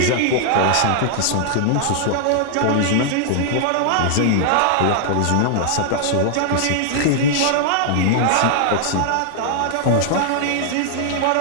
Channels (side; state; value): both; different; correlation 0.00